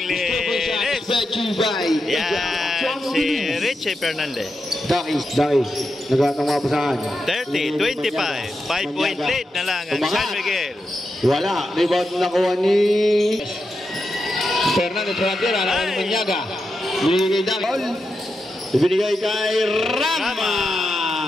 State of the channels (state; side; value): normal; both; correlation 0.87